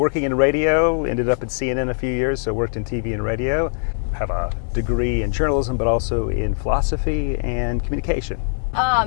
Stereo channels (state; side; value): silent; right; 65 dB below the other